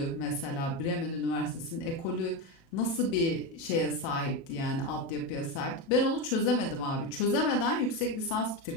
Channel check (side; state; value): right; late; 36 ms